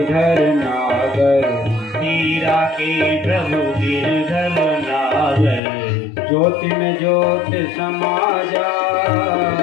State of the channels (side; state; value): right; drops out; at 5.6 s